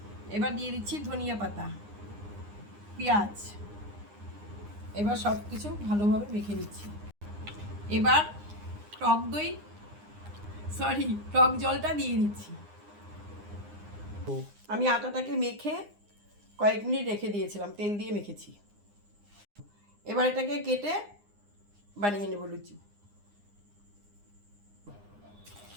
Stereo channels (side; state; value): left; late; 9.8 ms